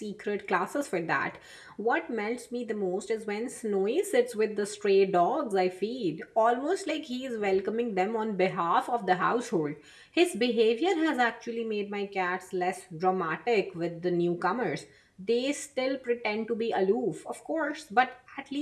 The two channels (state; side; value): identical; both; correlation 1.00